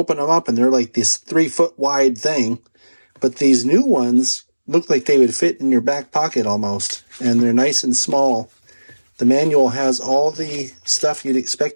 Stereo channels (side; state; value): both; inverted; correlation -1.00